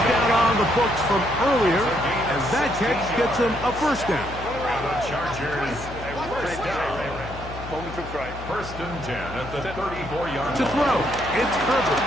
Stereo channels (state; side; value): noise; left; hum, 12 dB below the sound